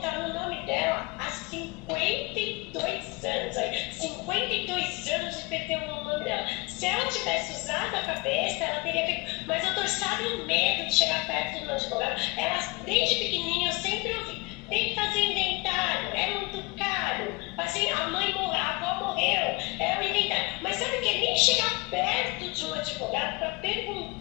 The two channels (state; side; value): quieter; right; 25.6 dB